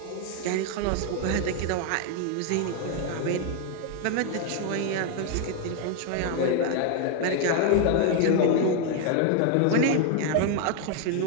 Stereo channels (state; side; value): different; both; correlation 0.00